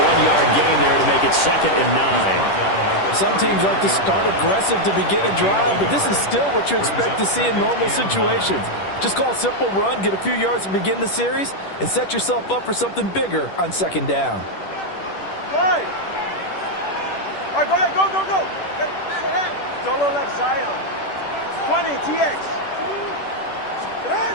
1-yard gain there to make it 2nd and 9. Some teams like to start aggressive to begin a drive, but this is still what you expect to see in normal situations. Just call a simple run, get a few yards to begin the series, and set yourself up for something bigger on 2nd down. Right. All right, go ahead, go. Solo left Zion. 20, TX.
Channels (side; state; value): right; late; 10 ms